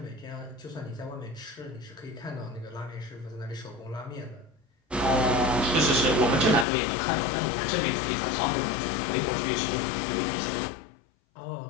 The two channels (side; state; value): right; drops out; at 6.7 s